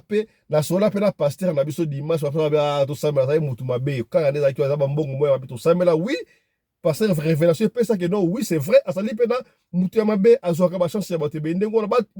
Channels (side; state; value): both; identical; correlation 1.00